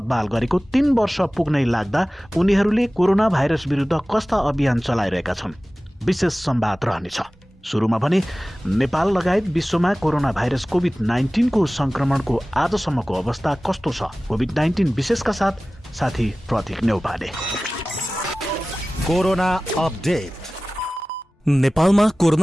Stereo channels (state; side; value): normal; both; correlation 0.97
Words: गरेको 3 वर्ष पुग्नै लाग्दा उनीहरूले कोरोना भाइरस विरुद्ध कस्ता अभियान चलाइरहेका छन्, विशेष संवाद रहनेछ। सुरुमा भने नेपाल लगायत विश्वमा कोरोना भाइरस कोभिड-19 को संक्रमणको आजसम्मको अवस्था कस्तो छ, कोभिड-19 विशेषका साथ साथी प्रतीक नेउपाने। Corona update. नेपालमा